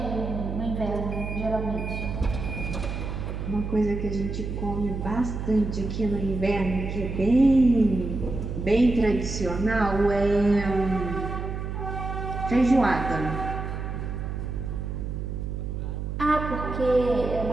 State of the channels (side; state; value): right; noise; hum, 4 dB below the sound